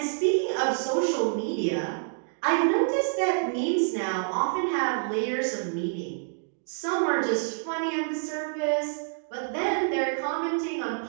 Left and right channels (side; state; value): left; silent; digital silence